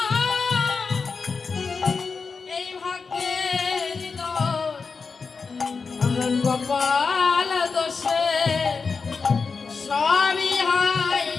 এই ভাগ্যের দোষ আমার কপাল দোষে সবই হয়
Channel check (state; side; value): quieter; right; 4.9 dB